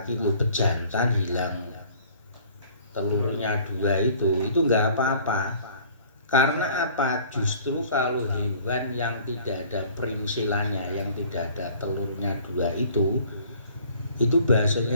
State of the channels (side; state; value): both; inverted; correlation -0.52